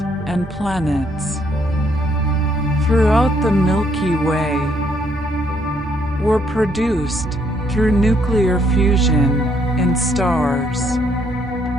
and planets throughout the Milky Way were produced through nuclear fusion in stars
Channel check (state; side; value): normal; both; correlation 0.69